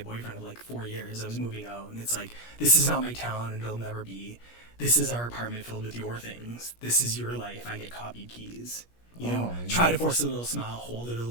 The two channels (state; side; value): late; right; 17 ms